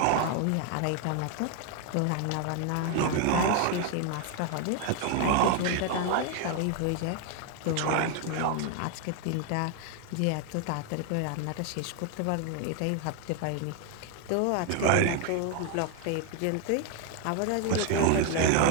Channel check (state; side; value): different; both; correlation 0.00